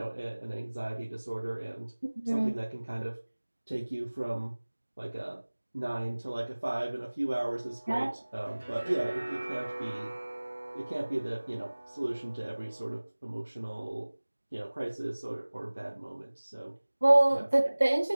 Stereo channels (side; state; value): both; inverted; correlation -1.00